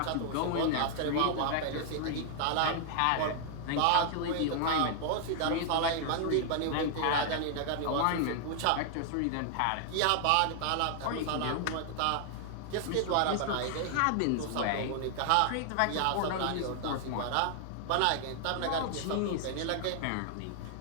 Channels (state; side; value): different; both; correlation 0.00